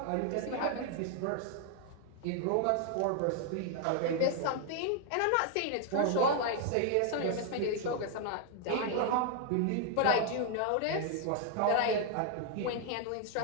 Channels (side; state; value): both; different; correlation 0.00